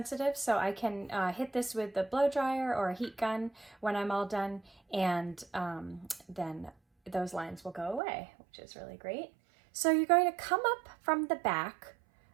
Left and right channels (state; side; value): drops out; left; at 8.0 s